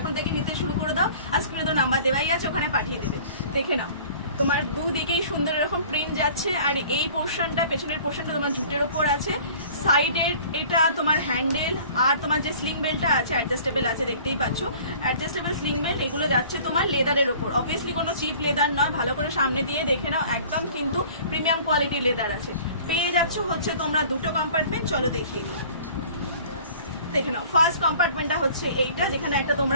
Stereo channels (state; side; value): inverted; both; correlation -0.48